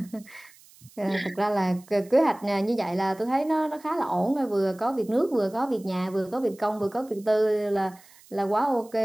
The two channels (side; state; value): right; noise; hiss, 25 dB below the sound